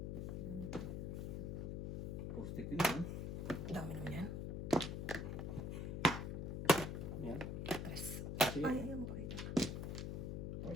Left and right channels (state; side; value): noise; left; hum, 2 dB below the sound